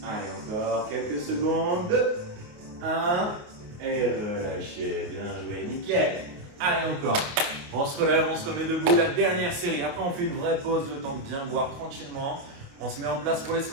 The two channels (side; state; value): left; late; 28 ms